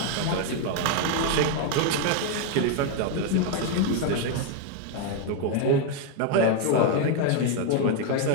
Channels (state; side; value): different; both; correlation 0.01